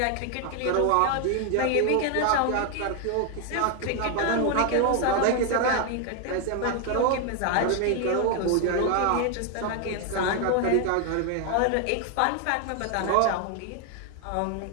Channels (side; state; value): both; different; correlation 0.01